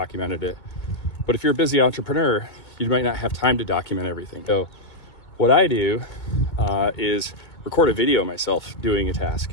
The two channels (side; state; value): right; late; 2.4 ms